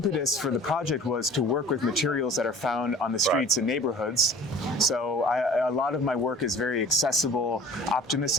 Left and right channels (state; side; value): normal; both; correlation 0.46